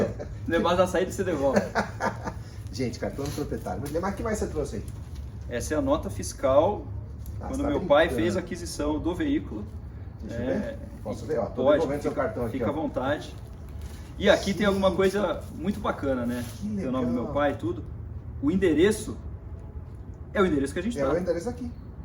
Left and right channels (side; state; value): both; identical; correlation 1.00